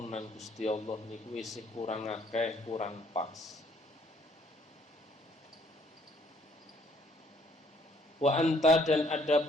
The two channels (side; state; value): both; normal; correlation 0.64